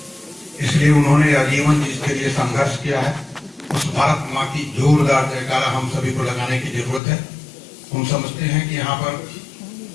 इसलिए उन्होंने आजीवन जिसके लिए संघर्ष किया है उस भारत माँ की जोरदार जयकारा हम सभी को लगाने की जरूरत है। हम समझते हैं कि यहाँ पर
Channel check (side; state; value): right; drops out; at 7.0 s